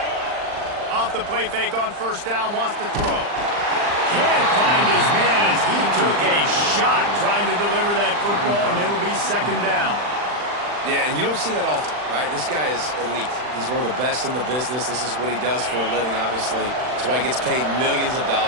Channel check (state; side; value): late; left; 40 ms